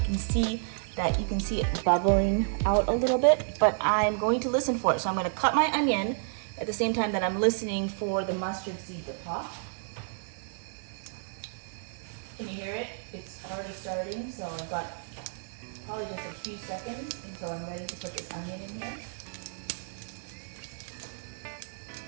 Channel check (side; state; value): left; silent; digital silence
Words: can see it bubbling out a little bit, but I'm going to listen for it. So I'm going to cut my onion at the same time that I'm listening for the mustard seed to pop. Can you hear it? It's already starting, so I've got probably just a few seconds until I'm ready to put this onion in here.